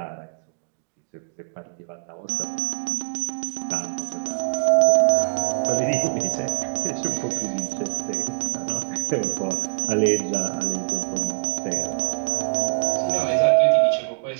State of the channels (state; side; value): silent; left; digital silence